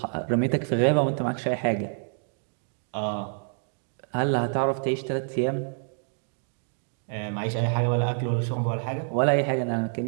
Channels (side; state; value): left; silent; digital silence